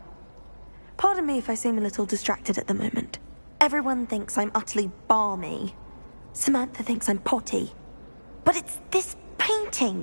Pardon me if I seem a little distracted at the moment. Everyone thinks I'm utterly balmy. Samantha thinks I'm potty. But it's this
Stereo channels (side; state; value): both; inverted; correlation -1.00